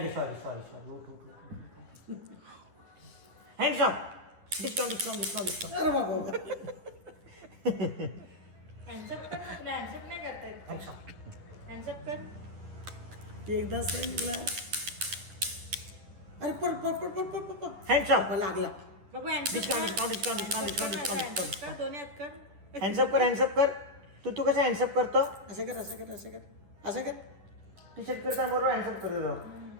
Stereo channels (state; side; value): late; left; 10 ms